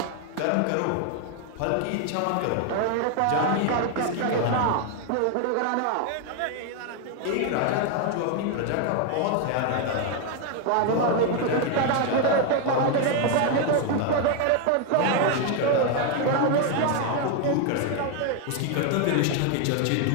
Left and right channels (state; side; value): different; both; correlation 0.01